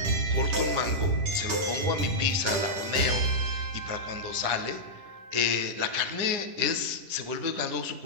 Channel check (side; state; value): left; late; 10 ms